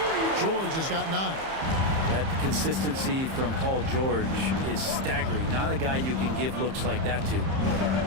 George has got 9. That consistency from Paul George is staggering. Not a guy you can give looks like that to.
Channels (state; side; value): late; left; 30 ms